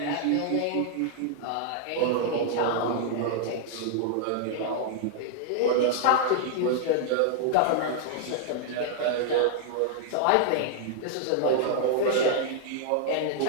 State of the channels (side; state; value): both; different; correlation -0.01